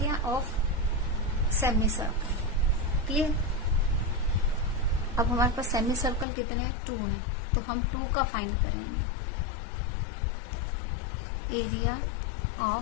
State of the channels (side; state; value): right; drops out; at 6.2 s